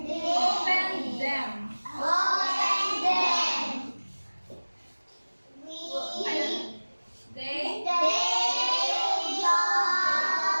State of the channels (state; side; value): inverted; both; correlation -1.00